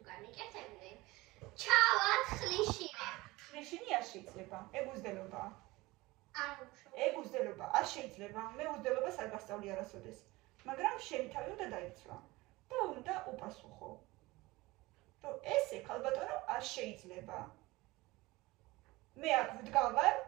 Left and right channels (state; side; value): quieter; left; 20.8 dB